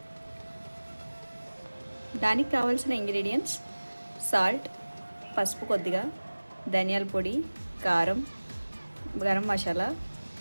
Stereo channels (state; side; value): inverted; both; correlation -1.00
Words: దానికి కావాల్సిన ఇంగ్రీడియంట్స్: సాల్ట్, పసుపు కొద్దిగా, ధనియాల పొడి, కారం, గరం మసాలా,